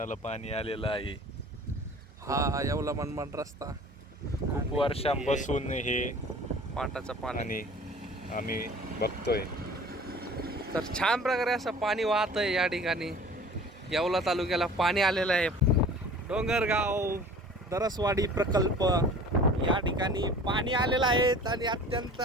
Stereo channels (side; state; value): both; normal; correlation 0.45